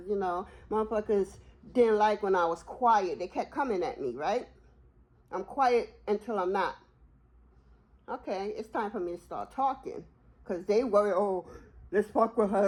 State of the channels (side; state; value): both; identical; correlation 1.00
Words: you know, motherfuckers didn't like when I was quiet. They kept coming at me, right? I'm quiet until I'm not. Okay, it's time for me to start talking. Because they worry, oh, let's fuck with